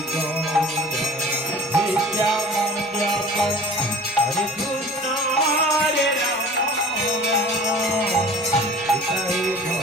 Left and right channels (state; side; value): normal; both; correlation 0.44